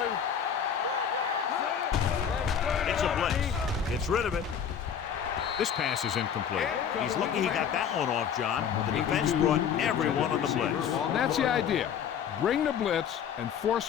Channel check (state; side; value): quieter; right; 8.0 dB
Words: It's a blitz. Gets rid of it. This pass is incomplete. He's lucky he got that one off, John. The defense brought everyone on the blitz. That's the idea. Bring the blitz and force